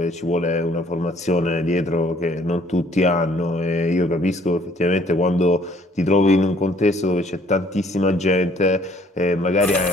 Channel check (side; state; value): both; normal; correlation 0.60